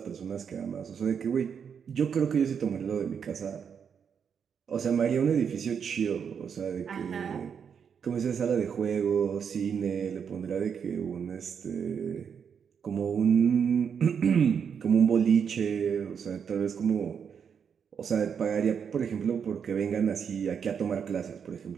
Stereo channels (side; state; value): left; quieter; 7.1 dB